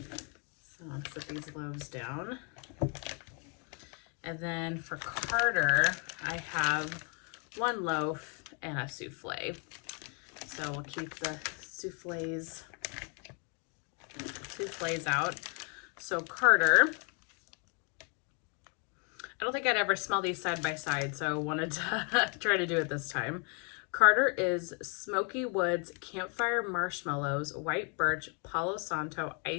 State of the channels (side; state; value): right; quieter; 36.8 dB